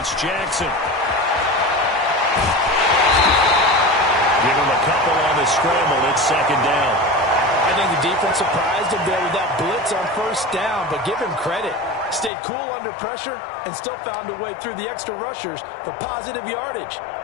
Jackson. Give him a couple on the scramble. It's 2nd down. I think the defense surprised him there with that blitz on 1st down, but give him credit. Stayed cool under pressure and still found a way through the extra rushers for positive yardage.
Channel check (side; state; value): right; drops out; at 12.3 s